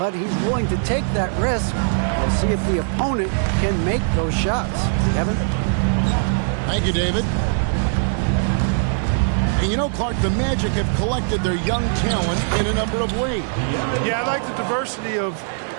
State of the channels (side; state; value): left; silent; digital silence